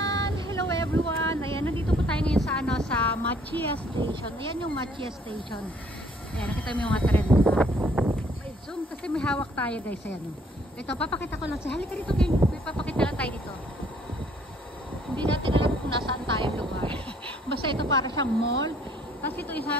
Hello everyone! Ayan, nandito po tayo ngayon sa, sa Machia Station. Ayan yung Machia Station. Ayan, nakita mo yung mga trend. May zoom kasi may hawak tayo guys. Ayan. Ito, papakita ko lang. Halika dito kayo. May papakita lang tayo dito. Hindi natin alam kung nasaan tayo lugar. Basta ito para siyang mall. Tapos ito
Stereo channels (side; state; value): both; normal; correlation 0.62